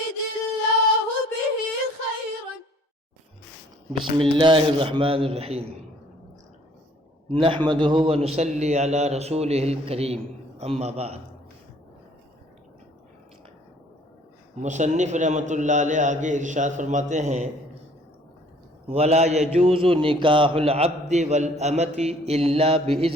الله به خيرا. بسم اللہ الرحمن الرحیم نحمدہ ونصلی علی رسولہ الکریم اما بعد. مصنف رحمۃ اللہ علیہ آگے ارشاد فرماتے ہیں ولا یجوز نکاح العبد والامۃ الا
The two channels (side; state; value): both; normal; correlation 0.58